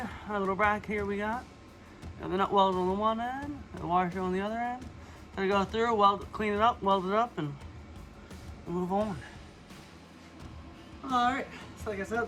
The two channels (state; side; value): identical; both; correlation 1.00